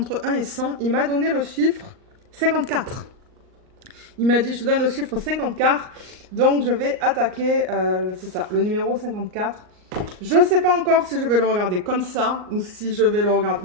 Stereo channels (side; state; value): left; late; 38 ms